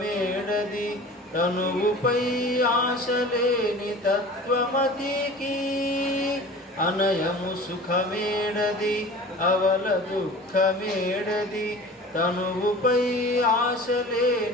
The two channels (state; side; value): normal; both; correlation 0.40